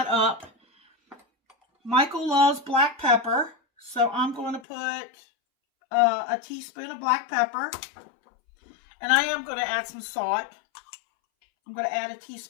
up. Michael loves black pepper, so I'm going to put a teaspoon of black pepper. And I am going to add some salt. I'm going to add a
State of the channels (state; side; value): drops out; right; at 4.7 s